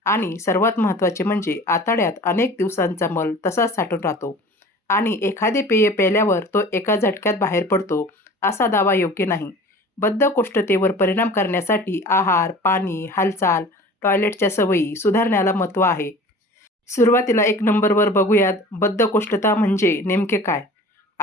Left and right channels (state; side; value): normal; both; correlation 0.42